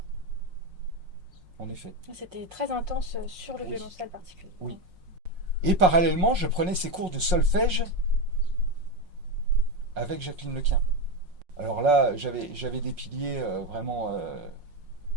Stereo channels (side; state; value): left; late; 5.5 ms